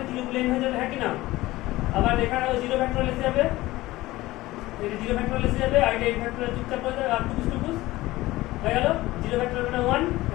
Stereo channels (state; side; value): quieter; right; 18.1 dB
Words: 0 গুলো n হয়ে যাবে, হ্যাঁ কি না। আবার এখানেও 0 ফ্যাক্টোরিয়াল এসে যাবে, এই 0 ফ্যাক্টোরিয়াল এসে যাবে, আর n ফ্যাক্টোরিয়াল চুপচাপ হয়ে যাবে, আর টুকুস টুকুস হয়ে গেল। 0 ফ্যাক্টোরিয়াল মানে 1,